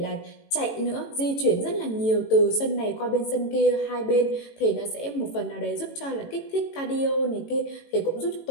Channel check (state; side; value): late; right; 18 ms